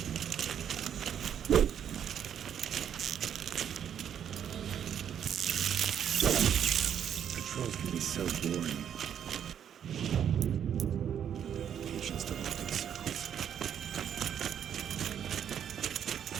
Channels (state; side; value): quieter; left; 9.0 dB